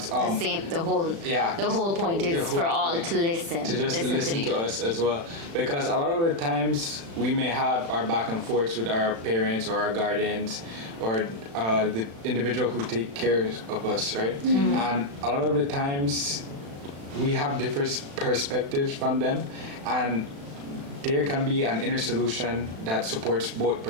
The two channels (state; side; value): late; left; 36 ms